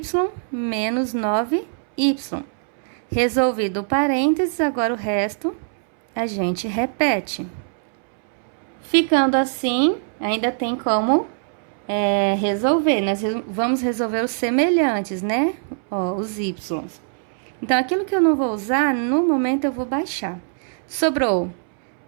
menos 9y. Resolvido o parênteses, agora o resto a gente repete. Ficando assim, ainda tem como resolver. Nós vamos resolver os semelhantes, né? Ó, os y. Então, aquilo que eu não vou usar, no momento eu vou baixar. Sobrou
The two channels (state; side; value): silent; left; 64 dB below the other